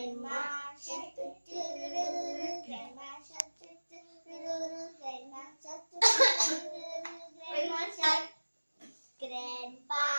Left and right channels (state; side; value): inverted; both; correlation -1.00